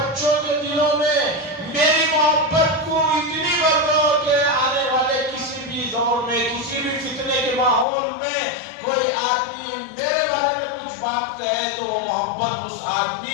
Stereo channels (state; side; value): drops out; right; at 7.9 s